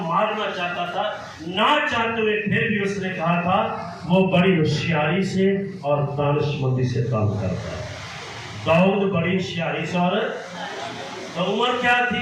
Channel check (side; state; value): both; identical; correlation 1.00